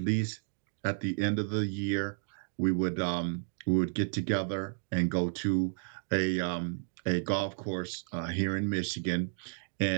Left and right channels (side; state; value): left; silent; digital silence